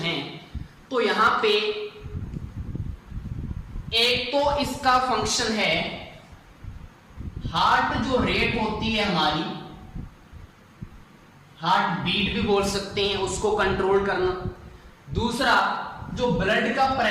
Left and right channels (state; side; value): identical; both; correlation 1.00